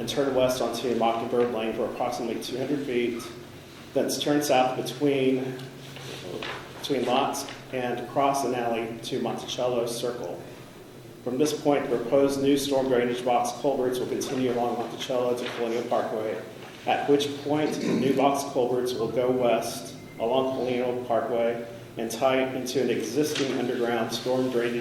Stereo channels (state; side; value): identical; both; correlation 1.00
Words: turn west onto Mockingbird Lane for approximately 200 feet. Thence turn south between lots and cross an alley to Monticello Circle. From this point, the proposed new storm drainage box culverts will continue along Monticello to Colonial Parkway, at which point the new box culverts will go west along Colonial Parkway and tie into an existing underground storm